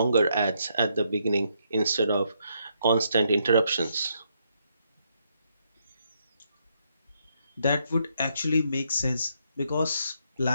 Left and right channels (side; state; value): both; inverted; correlation -0.75